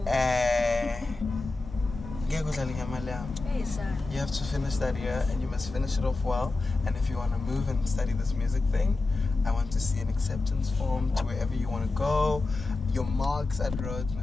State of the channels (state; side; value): quieter; right; 3.4 dB